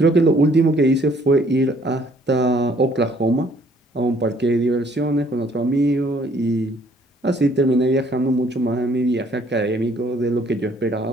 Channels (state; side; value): normal; both; correlation 0.62